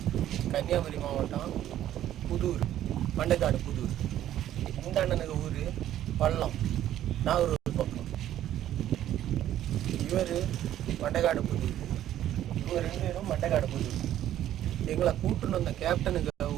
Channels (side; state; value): left; quieter; 12.1 dB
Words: கன்னியாகுமரி மாவட்டம் புதூர், மண்டைக்காடு புதூர். இந்த அண்ணனுக்கு ஊர் பள்ளம், நாகூர் பக்கம். இவர் மண்டைக்காடு புதூர், இவங்க 2 பேரும் மண்டைக்காடு புதூர். எங்களை கூட்டுன்னு வந்த கேப்டனுக்கு